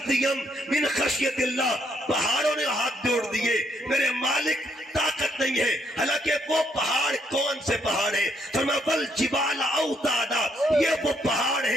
من خشیت اللہ. پہاڑوں نے ہاتھ جوڑ دیے, میرے مالک طاقت نہیں ہے. حالانکہ وہ پہاڑ کون سے پہاڑ ہے؟ فرمایا بل جبال اوتادا. یہ وہ پہاڑ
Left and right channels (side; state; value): both; normal; correlation 0.73